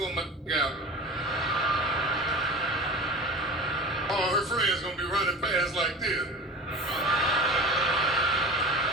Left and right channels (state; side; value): normal; both; correlation 0.34